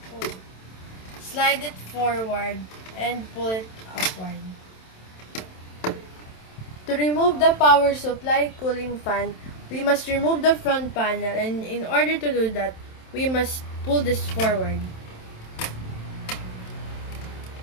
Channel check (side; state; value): right; late; 27 ms